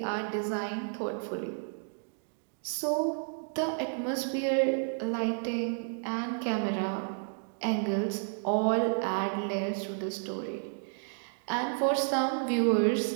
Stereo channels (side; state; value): left; silent; digital silence